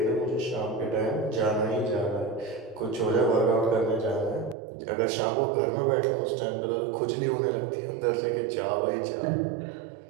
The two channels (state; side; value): drops out; left; at 4.5 s